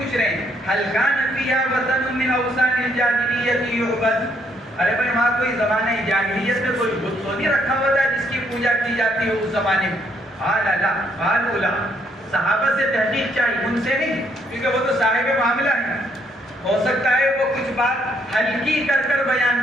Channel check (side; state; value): both; normal; correlation 0.71